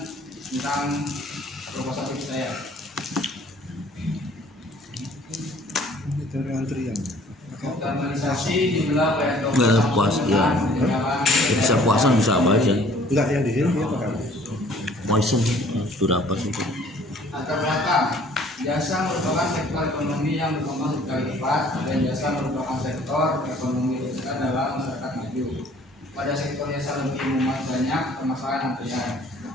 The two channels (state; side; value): normal; both; correlation 0.55